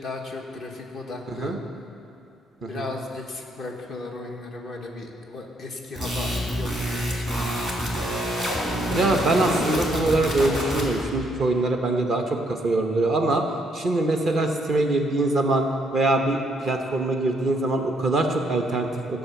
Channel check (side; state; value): both; normal; correlation 0.72